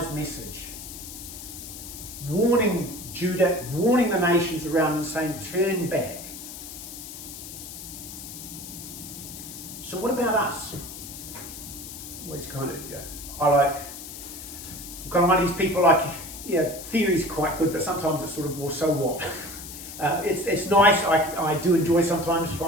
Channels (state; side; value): noise; left; hiss, 11 dB below the sound